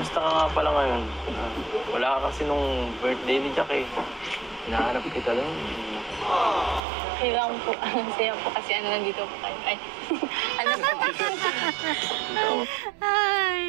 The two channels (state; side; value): drops out; left; at 6.8 s